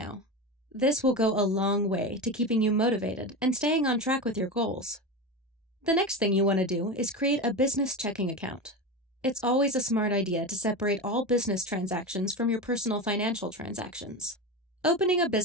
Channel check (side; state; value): both; normal; correlation 0.22